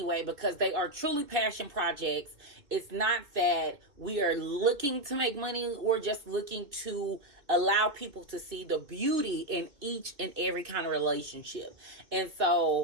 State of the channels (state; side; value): late; left; 3.4 ms